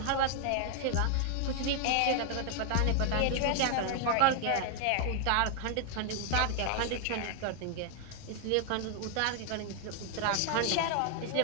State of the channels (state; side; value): different; both; correlation 0.00